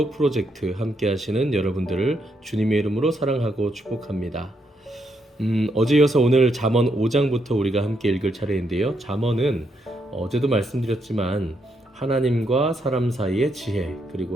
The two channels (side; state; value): both; normal; correlation 0.78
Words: 프로젝트 함께 하시는 여러분들을 주님의 이름으로 사랑하고 축복합니다. 어제 이어서 오늘 잠언 5장부터 우리가 함께 읽을 차례인데요. 잠언은 어제도 말씀드렸지만 하나님과 사람 사이의 지혜,